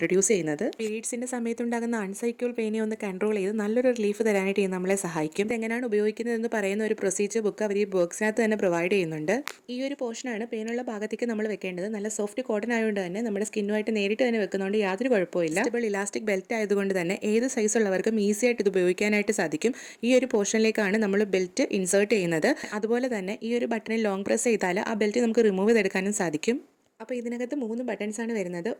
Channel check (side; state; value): both; identical; correlation 1.00